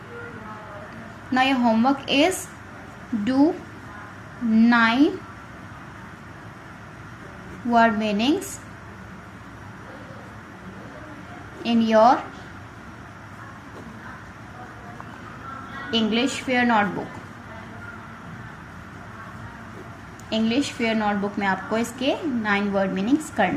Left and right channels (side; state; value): both; identical; correlation 1.00